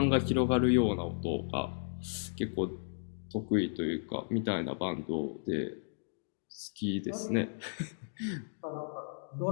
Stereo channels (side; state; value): right; silent; digital silence